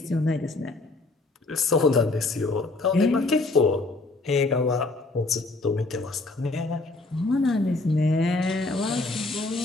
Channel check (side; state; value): right; quieter; 3.2 dB